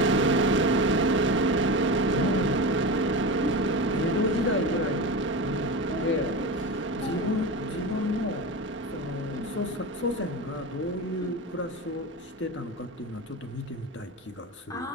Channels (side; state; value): both; normal; correlation 0.25